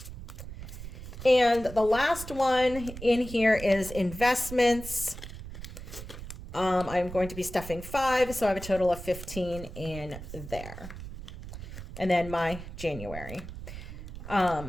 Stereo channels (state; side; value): noise; right; rumble, 11 dB below the sound